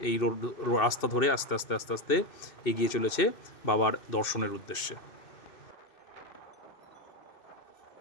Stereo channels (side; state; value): right; late; 2.7 ms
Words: এই রাস্তা ধরে আস্তে আস্তে আস্তে আস্তে এগিয়ে চলেছে বাবার দর্শনের উদ্দেশ্যে।